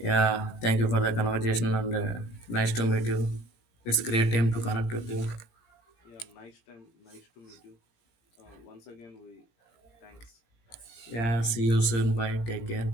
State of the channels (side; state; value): right; late; 17 ms